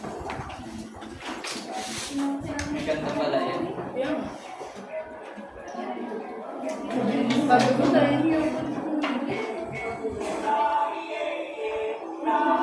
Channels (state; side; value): identical; both; correlation 1.00